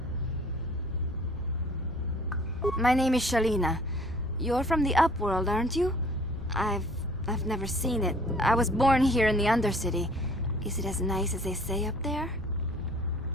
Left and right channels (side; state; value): both; normal; correlation 0.53